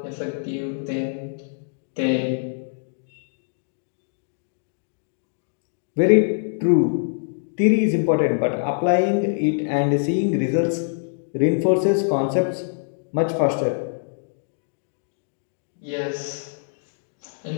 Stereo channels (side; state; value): right; silent; digital silence